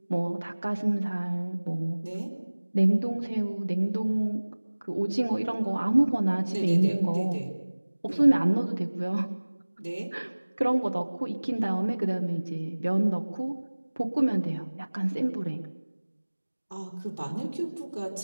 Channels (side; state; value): both; inverted; correlation -1.00